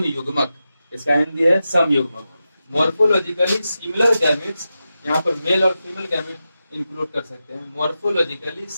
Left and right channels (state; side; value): inverted; both; correlation -0.91